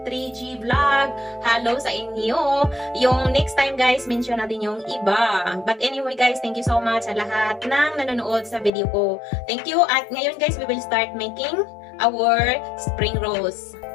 Vlog. Hello sa inyo. Yung next time guys, mention natin yung iba. But anyway guys, thank you so much sa lahat ng nanonood sa video ko. Thank you. At ngayon guys, we will start making our spring rolls.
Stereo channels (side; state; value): right; drops out; at 8.7 s